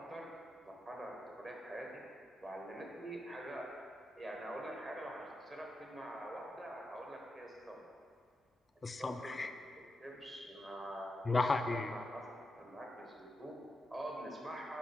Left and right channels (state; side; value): normal; both; correlation 0.87